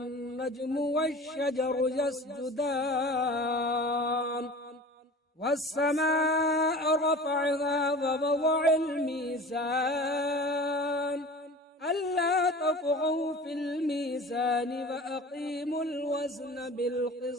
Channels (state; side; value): normal; both; correlation 0.39